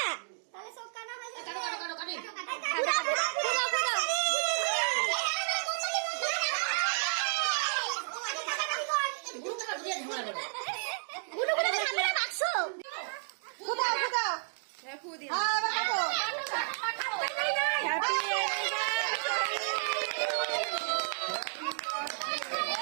তাহলে সব কানা হয়ে যাবে। পুরা পুরা পুরা পুরা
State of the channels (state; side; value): silent; left; digital silence